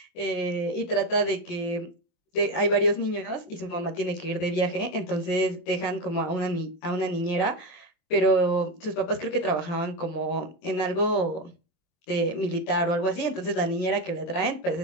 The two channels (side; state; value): right; late; 24 ms